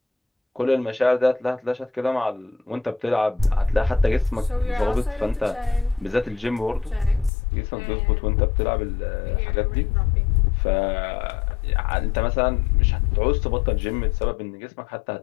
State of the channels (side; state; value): right; drops out; at 7.3 s